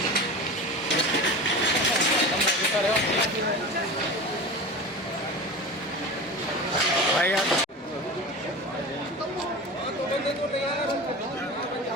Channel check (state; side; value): normal; both; correlation 0.31